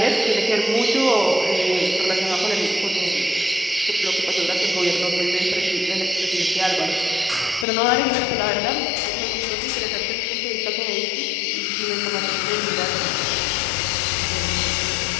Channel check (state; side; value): drops out; right; at 7.7 s